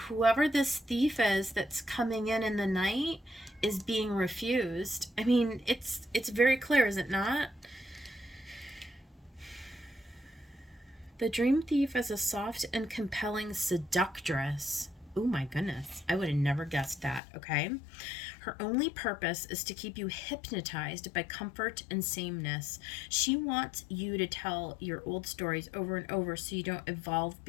whoever this thief is that's coming in the night is being refused. I mean, it's very clear, is it not? The dream thief is a soft and compelling seductress. Oh my goodness, I would have never guessed that, okay? Her only purpose is to keep you hypnotized by comfort and sameness. She wants you to tell your old stories over and over so you don't evolve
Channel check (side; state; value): right; drops out; at 17.2 s